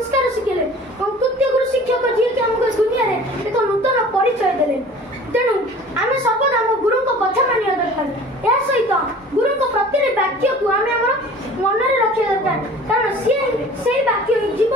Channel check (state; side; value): normal; both; correlation 0.45